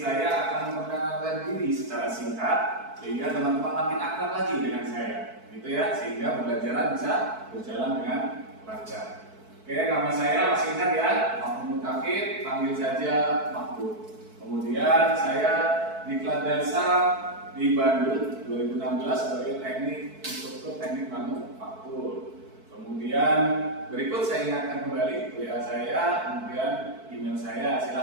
akan memperkenalkan diri secara singkat sehingga teman-teman makin akrab lagi dengan saya. Gitu ya, sehingga pembelajaran bisa berjalan dengan lancar. Oke, nama saya masih ingat ya, Mahmud Kafir, panggil saja Mahmud. Kemudian saya diklat dasar di Bandung 2016 sebagai teknik instruktur teknik manufaktur. Kemudian berikut saya ingatkan kembali WA saya, kemudian email saya.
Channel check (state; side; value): late; left; 4.6 ms